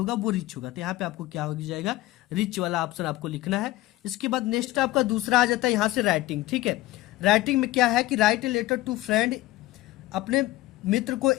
वो रिच होगा। तो यहाँ पे आपको क्या हो जाएगा, रिच वाला ऑप्शन आपको लिखना है। इसके बाद नेक्स्ट आपका दूसरा आ जाता है यहाँ से राइटिंग, ठीक है। राइटिंग में क्या है कि write a letter to friend, अपने मित्र को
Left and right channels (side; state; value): right; quieter; 17.4 dB